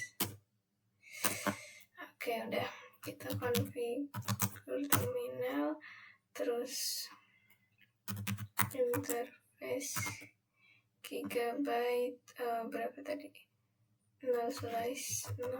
Oke, udah kita configure terminal, terus interface gigabyte berapa tadi?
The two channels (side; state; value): both; identical; correlation 1.00